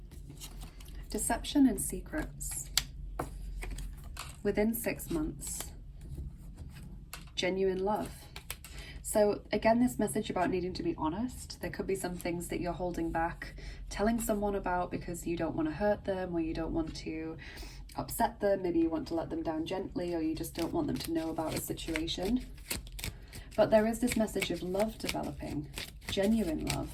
deception and secrets. Within 6 months. Genuine love. So again, this message about needing to be honest. There could be some things that you're holding back telling someone about because you don't want to hurt them or you don't want to upset them. Maybe you want to let them down gently, or you just don't want them to know about a situation. But there is this message of love developing, genuine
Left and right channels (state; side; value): identical; both; correlation 1.00